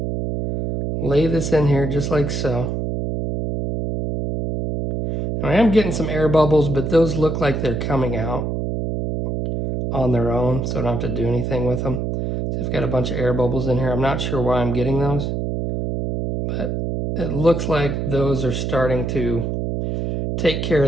lay this in here just like so. Now, I am getting some air bubbles, but those look like they're coming out on their own, so I don't have to do anything with them. So I've got a bunch of air bubbles in here. I'm not sure why I'm getting those, but it looks like those are starting to take care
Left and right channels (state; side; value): noise; right; hum, 2 dB below the sound